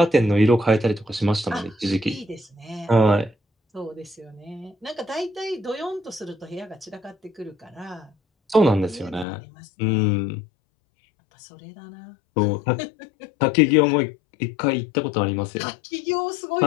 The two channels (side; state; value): right; drops out; at 9.2 s